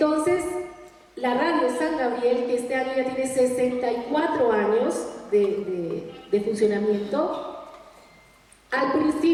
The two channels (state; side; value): identical; both; correlation 1.00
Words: la Radio San Gabriel, que este año ya tiene 64 años de funcionamiento, al